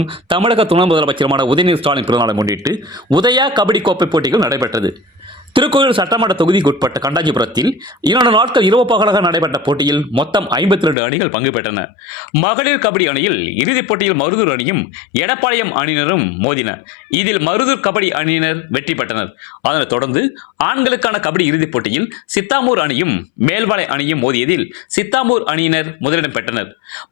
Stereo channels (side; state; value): right; drops out; at 11.0 s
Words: தமிழக துணை முதலமைச்சருமான உதயநிதி ஸ்டாலின் பிறந்தநாளை முன்னிட்டு உதயா கபடி கோப்பை போட்டிகள் நடைபெற்றது. திருக்கோயிலூர் சட்டமன்ற தொகுதிக்குட்பட்ட கண்டாஞ்சிபுரத்தில் 2 நாட்கள் இரவு பகலாக நடைபெற்ற போட்டியில் மொத்தம் 52 அணிகள் பங்கு பெற்றன. மகளிர் கபடி அணியில் இறுதிப் போட்டியில் மருதூர் அணியும் எடப்பாளையம் அணியினரும் மோதின. இதில் மருதூர் கபடி அணியினர் வெற்றி பெற்றனர். அதனைத் தொடர்ந்து ஆண்களுக்கான கபடி இறுதிப் போட்டியில் சித்தாமூர் அணியும் மேல்வாளை அணியும் மோதியதில் சித்தாமூர் அணியினர் முதலிடம் பெற்றனர்.